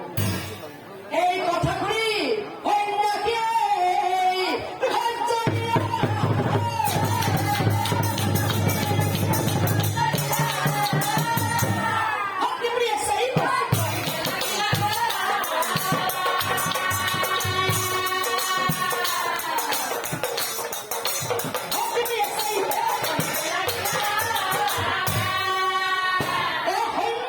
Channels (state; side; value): identical; both; correlation 1.00